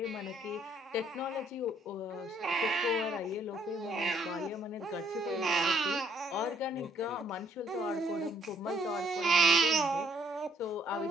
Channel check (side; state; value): both; normal; correlation 0.66